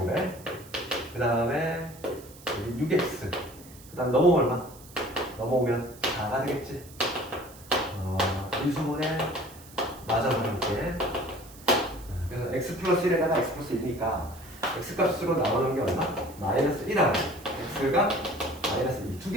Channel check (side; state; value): right; noise; hiss, 21 dB below the sound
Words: 그 다음에 6x 그 다음 넘어오면 얼마? 넘어오면 4가 되겠지. 인수분해 맞아서 볼게. 그래서 x 플러스 1에다가 x 플러스 1이니까 x 값으로 나오는 게 얼마? 마이너스 1하고 x가 마이너스 2. 두